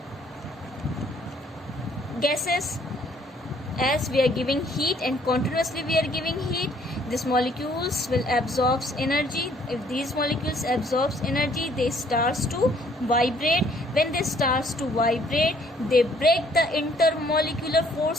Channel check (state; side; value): normal; both; correlation 0.62